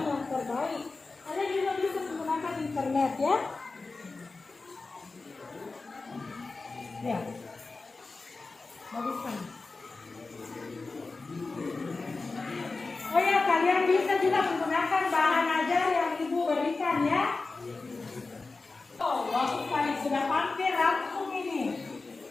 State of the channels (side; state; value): right; quieter; 3.8 dB